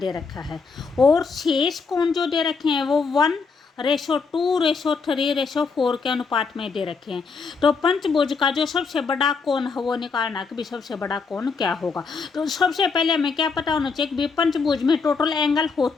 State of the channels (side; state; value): right; quieter; 4.9 dB